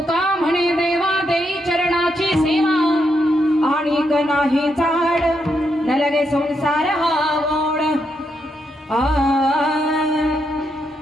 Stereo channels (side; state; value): both; normal; correlation 0.81